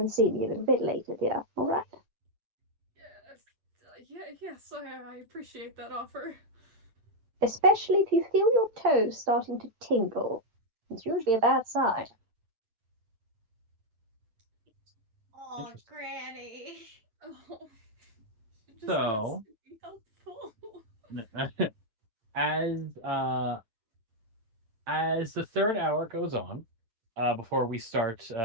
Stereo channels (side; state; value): left; late; 8.9 ms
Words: see me a little bit later, dear, all right? Yes, I appreciate that offer. Especially if you feel your toes starting to tingle. It's usually a bad sign. Oh, Interesting. Granny. Oh, she just wants So, to be helpful. as as the third hour goes on, before we start